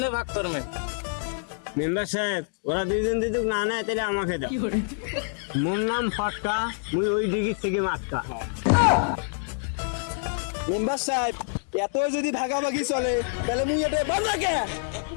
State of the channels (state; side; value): silent; right; digital silence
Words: ভাগ করবেন? মেম্বার সাহেব ওরা দুইজন যদি না নেয় তাহলে আমাকে দাও। মোর নাম ফটকা, মুই ওই ডিগির থেকে মাটকা। মেম্বার সাহেব এত যদি ভাগাভাগি চলে তাহলে মুই এটা বন্ধ রাখে।